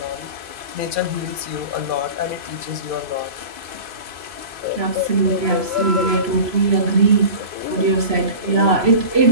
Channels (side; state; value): left; late; 3.0 ms